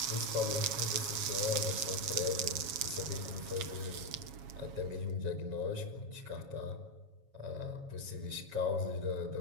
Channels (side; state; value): left; late; 7.2 ms